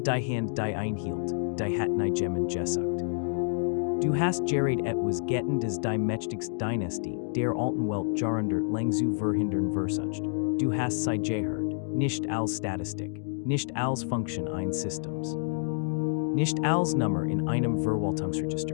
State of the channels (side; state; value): right; silent; digital silence